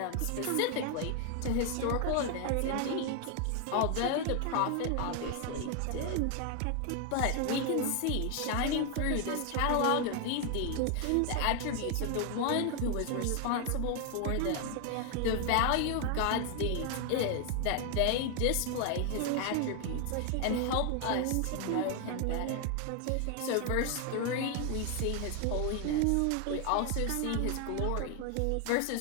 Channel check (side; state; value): both; different; correlation 0.00